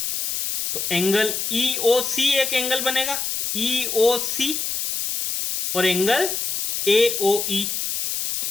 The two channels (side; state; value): left; noise; hiss, 2 dB below the sound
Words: तो एंगल EOC एक एंगल बनेगा, EOC और एंगल AOE,